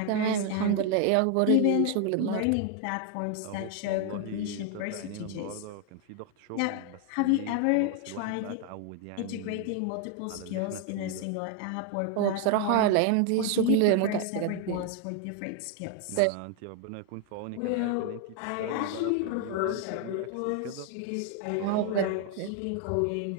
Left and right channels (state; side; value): different; both; correlation 0.01